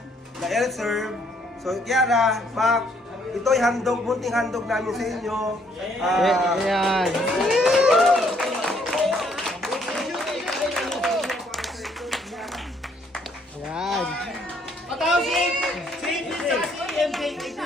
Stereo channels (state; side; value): normal; both; correlation 0.67